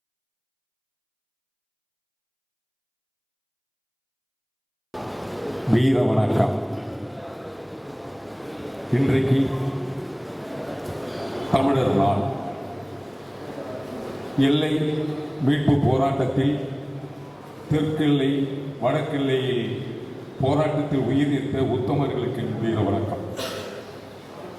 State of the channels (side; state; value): both; identical; correlation 1.00